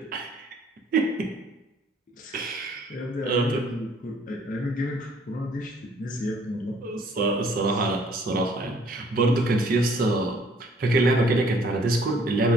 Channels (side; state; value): both; normal; correlation 0.60